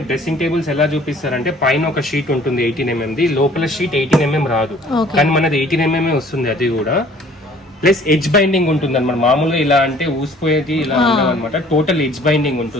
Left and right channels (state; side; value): normal; both; correlation 0.54